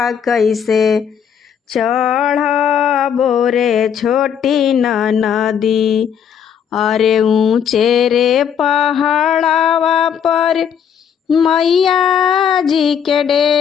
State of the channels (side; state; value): right; quieter; 8.1 dB